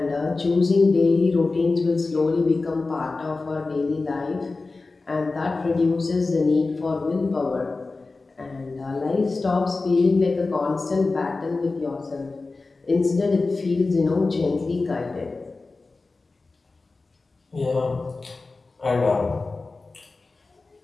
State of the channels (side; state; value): right; quieter; 3.7 dB